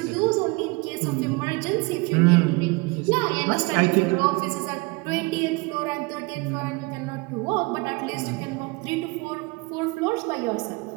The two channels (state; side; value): quieter; left; 26.5 dB